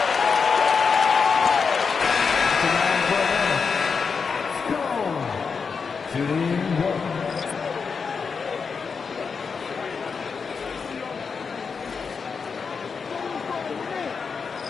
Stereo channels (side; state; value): right; quieter; 5.5 dB